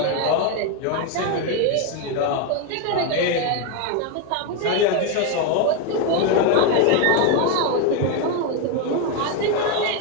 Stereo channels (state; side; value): different; both; correlation 0.02